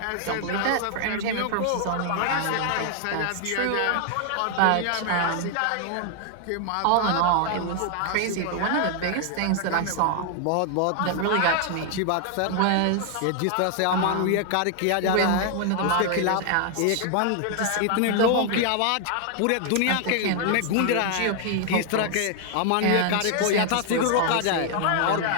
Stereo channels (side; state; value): both; different; correlation 0.00